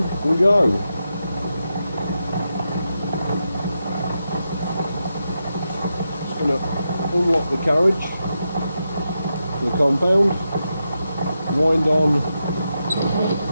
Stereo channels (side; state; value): both; inverted; correlation -0.87